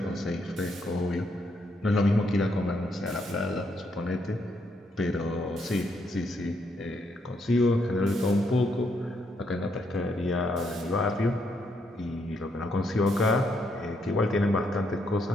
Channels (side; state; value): both; normal; correlation 0.76